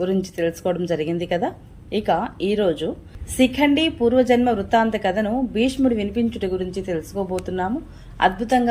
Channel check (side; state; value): both; identical; correlation 1.00